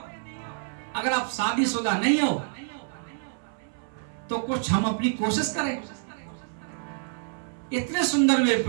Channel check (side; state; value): left; silent; 60 dB below the other